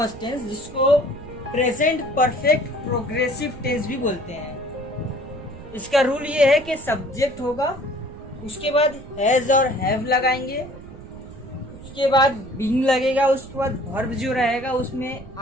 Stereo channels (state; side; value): noise; right; rumble, 16 dB below the sound